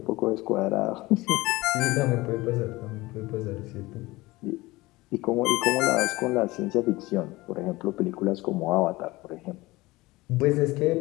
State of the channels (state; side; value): quieter; right; 20.4 dB